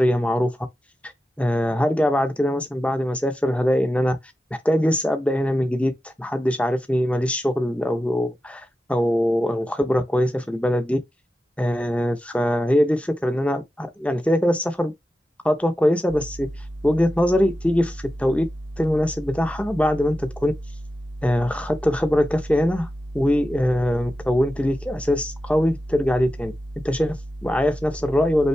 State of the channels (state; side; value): normal; both; correlation 0.91